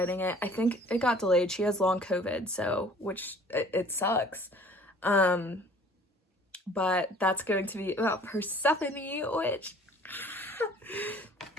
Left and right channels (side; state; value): both; normal; correlation 0.51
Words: it. I think it got delayed. She has long COVID, so it sucks. But that's going to be about Persephone, which